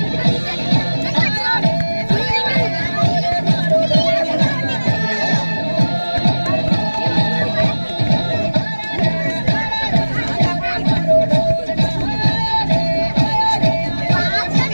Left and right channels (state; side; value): inverted; both; correlation -1.00